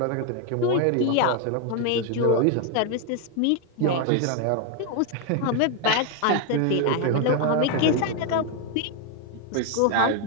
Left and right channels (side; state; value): both; different; correlation 0.01